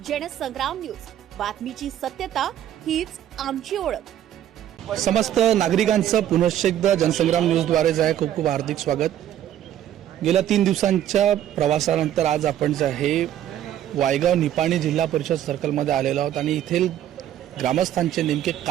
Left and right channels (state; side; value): quieter; left; 11.4 dB